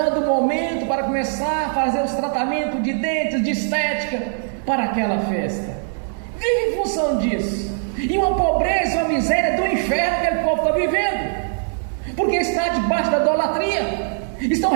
o momento para começar a fazer os tratamentos de dentes, de estética, para aquela festa. Vive em função disso. E uma pobreza e uma miséria do inferno que aquele povo está vivendo, porque está debaixo da idolatria, estão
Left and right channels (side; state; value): left; silent; digital silence